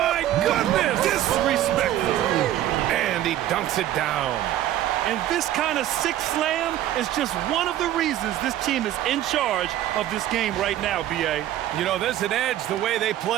goodness. Disrespectful. And he dunks it down. And this kind of sick slam is just one of the reasons this team is in charge of this game right now, B.A. You know, there's an edge the way they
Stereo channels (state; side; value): quieter; left; 12.8 dB